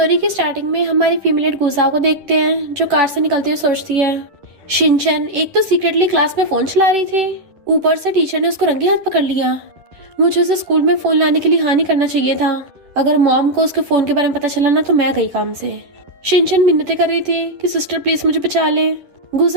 की स्टार्टिंग में हमारी फीमेल गुजाओ को देखते हैं जो कार से निकलती हुई सोचती है, शिनचैन एक तो सीक्रेटली क्लास में फोन चला रही थी, ऊपर से टीचर ने उसको रंगे हाथ पकड़ लिया। मुझे उसे स्कूल में फोन लाने के लिए हाँ नहीं करना चाहिए था। अगर मॉम को उसके फोन के बारे में पता चला ना तो मैं गई काम से। शिनचैन मिन्नतें कर रही थी कि सिस्टर प्लीज मुझे बचा ले।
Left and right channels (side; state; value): left; late; 10 ms